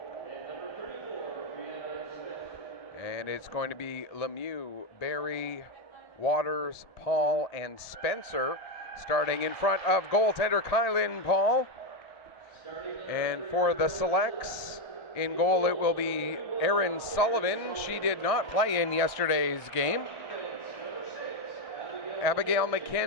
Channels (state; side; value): late; right; 1.6 ms